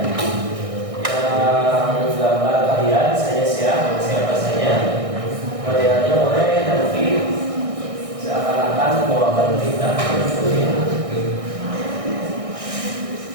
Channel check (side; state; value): left; late; 1.6 ms